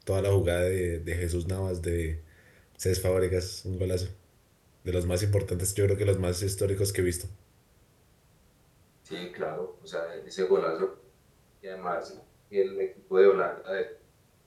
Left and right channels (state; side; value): identical; both; correlation 1.00